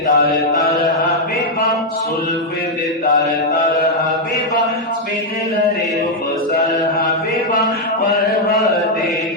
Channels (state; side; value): normal; both; correlation -0.01